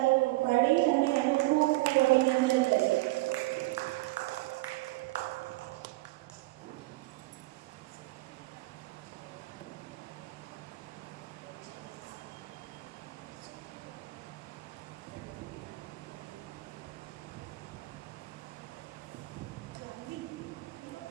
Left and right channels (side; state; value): left; quieter; 21.0 dB